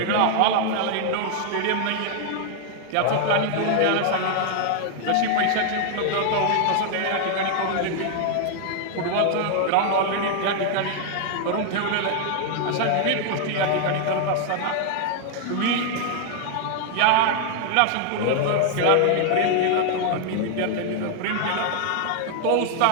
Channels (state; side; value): different; both; correlation 0.00